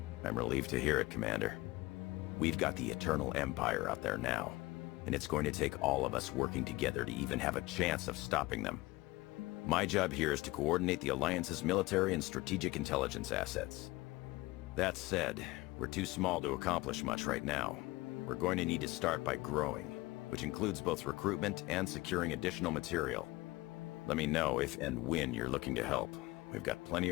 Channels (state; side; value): quieter; right; 20.7 dB